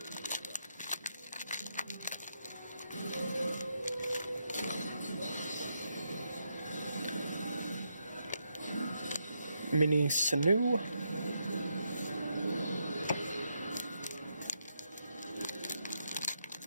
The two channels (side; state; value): both; inverted; correlation -0.80